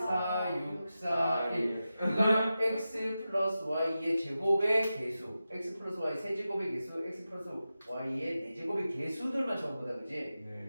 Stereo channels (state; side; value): inverted; both; correlation -0.93